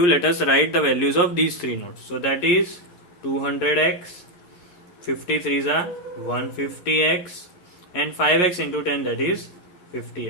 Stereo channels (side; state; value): right; late; 11 ms